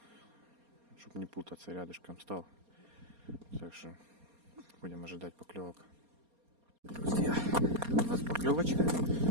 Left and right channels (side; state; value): left; late; 4.3 ms